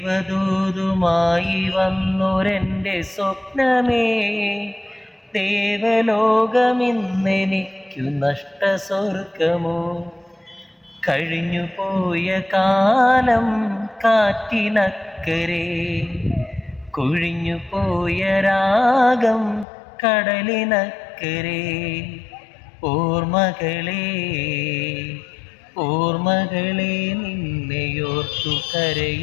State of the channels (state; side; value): drops out; right; at 19.7 s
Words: വന്നൊരെൻ്റെ സ്വപ്നമേ, ദേവലോകമിന്നെനിക്കു നഷ്ടസ്വർഗമോ? കഴിഞ്ഞുപോയ കാലം കാറ്റിനക്കരെ, കൊഴിഞ്ഞുപോയ രാഗം കടലിനക്കരെ. ഓർമ്മകളെ ഓർമ്മകളെ നിന്നെയോർത്തു